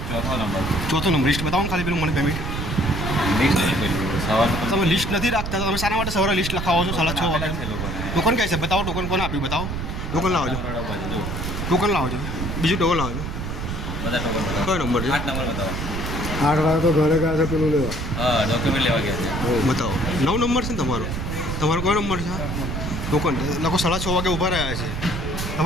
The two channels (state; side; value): noise; right; rumble, 4 dB below the sound